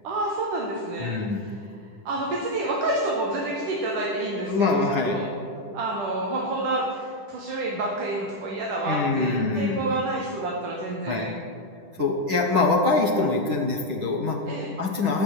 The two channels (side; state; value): left; late; 10 ms